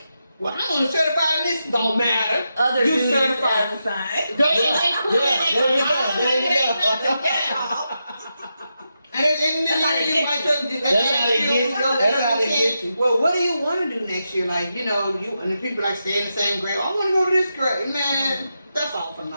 well, I'm only certified in this, don't matter. Other you duties certified. as assigned. There you go. And then That's how they get you. Well, what do you want to do next year? Like, you know, and the people like stay in the same grade. I want to go to this grade. Man, that's all for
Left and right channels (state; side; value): inverted; both; correlation -0.87